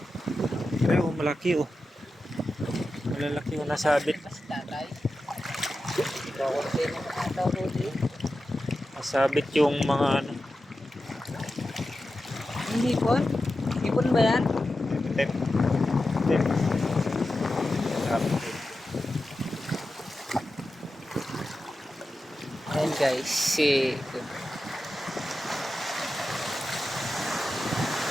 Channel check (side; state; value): both; normal; correlation 0.92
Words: Ay, malaki oh. Malalaki yung nasabit. Mas tatay. Kakunti naman ata huli. Nasabit yung mga Ang hipon? Hipon ba yan? Tip. Tip. Ayan guys, si...